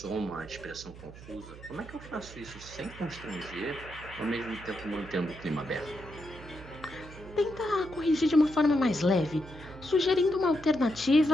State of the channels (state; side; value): noise; right; hum, 16 dB below the sound